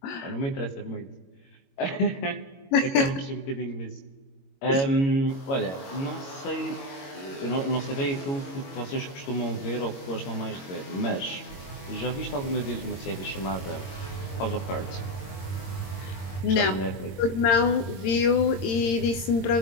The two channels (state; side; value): late; right; 22 ms